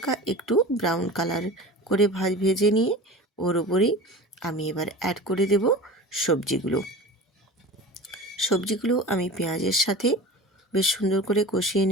একটু ব্রাউন কালার করে ভেজে নিয়ে ওর ওপরেই আমি এবার অ্যাড করে দেব সবজিগুলো। সবজিগুলো আমি পেঁয়াজের সাথে বেশ সুন্দর করে কষিয়ে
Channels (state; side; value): normal; both; correlation 0.35